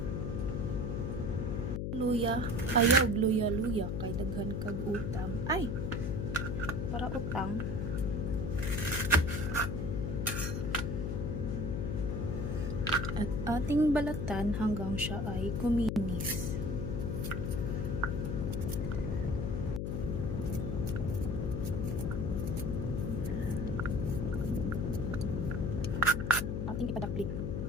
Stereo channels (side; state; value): left; noise; hum, 1 dB below the sound